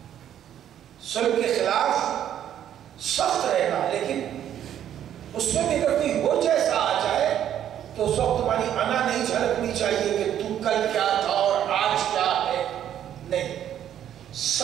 ظلم کے خلاف سخت رہنا، لیکن اس میں بھی اگر کوئی وہ جیسا آ جائے تو اس وقت تمہاری انا نہیں جھلکنی چاہیے کہ تو کل کیا تھا اور آج کیا ہے، نہیں،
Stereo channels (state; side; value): quieter; left; 10.5 dB